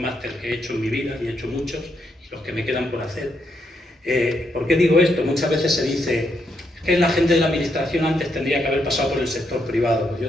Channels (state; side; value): normal; both; correlation 0.78